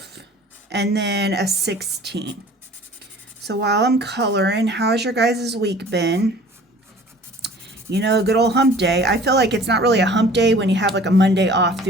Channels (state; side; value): normal; both; correlation 0.48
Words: and then a 16. So while I'm coloring, how's your guys' week been? You know, good old hump day. I feel like it's not really a hump day when you have like a Monday off